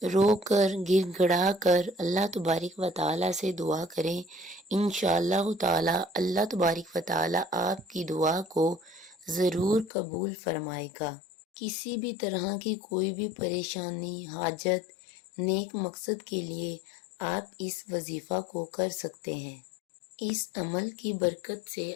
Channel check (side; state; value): right; drops out; at 9.9 s